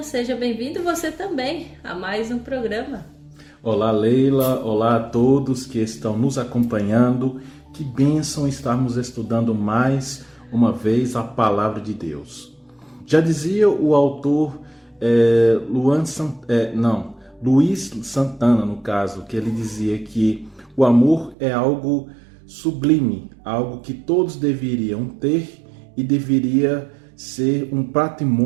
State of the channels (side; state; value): left; drops out; at 21.4 s